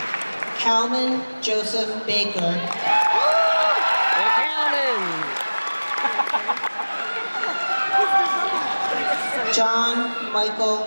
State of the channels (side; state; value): both; inverted; correlation -1.00